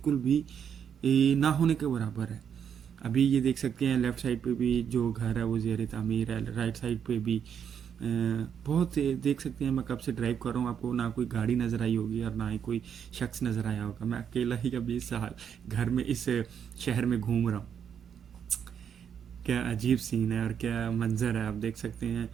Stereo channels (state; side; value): quieter; left; 8.0 dB